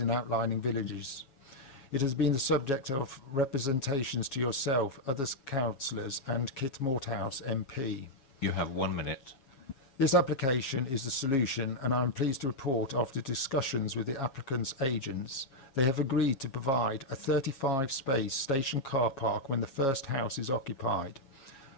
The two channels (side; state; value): right; late; 7.3 ms